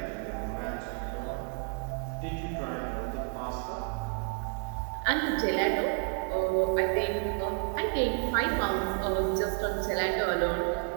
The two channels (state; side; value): quieter; left; 40.0 dB